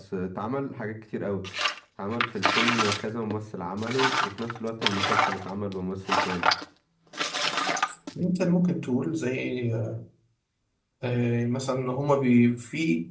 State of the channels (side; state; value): both; identical; correlation 1.00